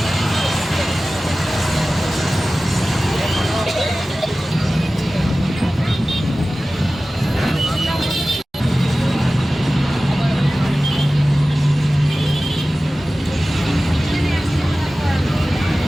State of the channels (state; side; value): normal; both; correlation 0.96